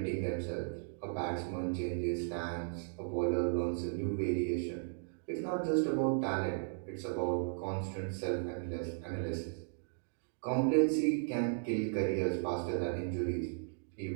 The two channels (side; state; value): left; silent; digital silence